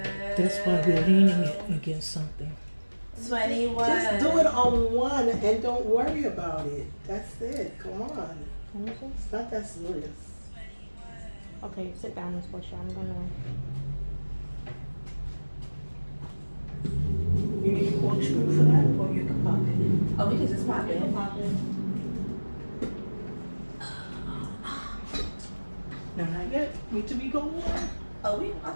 That's why we're leaning it against something. 21. Just do it on one and don't worry about it. That's it. Come on. It's not that serious. Okay, sit down, Miss Portia. I'm gonna. You need a corkscrew for that, or you can pop it. Oh, we can just pop it. No, not yet. Need to be going on. Oh, I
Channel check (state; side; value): inverted; both; correlation -1.00